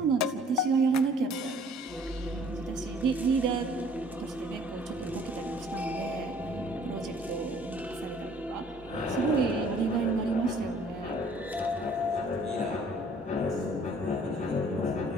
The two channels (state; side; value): normal; both; correlation 0.56